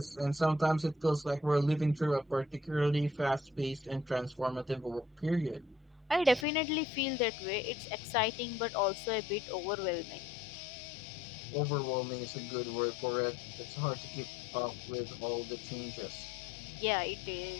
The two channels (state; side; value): drops out; right; at 6.5 s